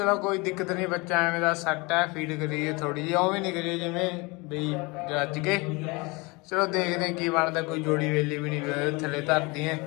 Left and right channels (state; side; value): quieter; right; 26.4 dB